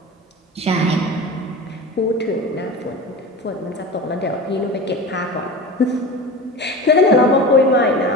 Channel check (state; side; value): normal; both; correlation 0.31